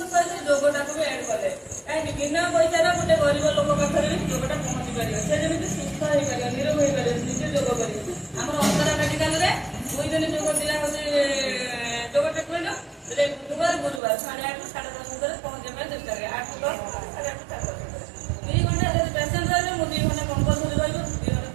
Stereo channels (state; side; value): drops out; left; at 14.0 s